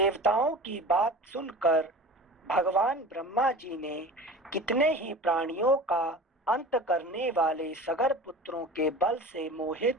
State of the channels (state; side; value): normal; both; correlation 0.36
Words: की बात सुनकर भगवान ब्रह्मा जी ने कितने ही प्राणियों का अंत करने वाले सगर पुत्रों के बल से मोहित